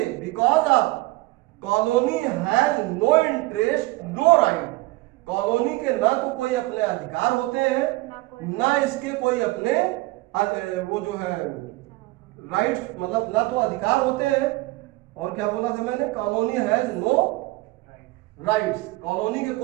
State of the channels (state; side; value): quieter; left; 20.8 dB